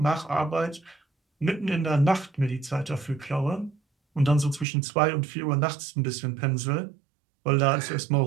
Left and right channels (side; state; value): left; drops out; at 4.7 s